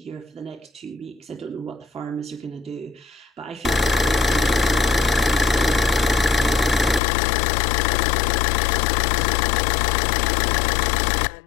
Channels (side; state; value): right; drops out; at 7.0 s